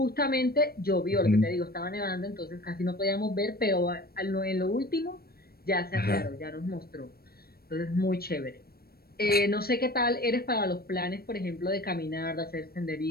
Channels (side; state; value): right; late; 0.44 ms